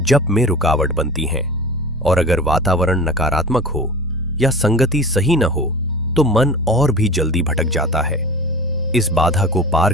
जप में रुकावट बनती हैं। और अगर वातावरण नकारात्मक हो या संगति सही न हो तो मन और भी जल्दी भटक जाता है। इस बाधा को पार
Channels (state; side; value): normal; both; correlation 0.36